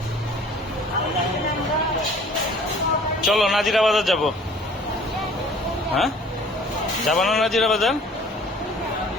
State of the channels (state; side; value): normal; both; correlation 0.51